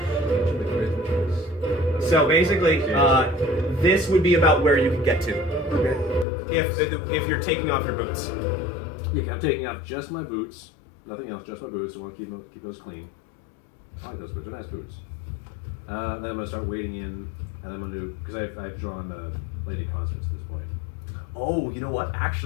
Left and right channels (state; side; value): drops out; right; at 6.2 s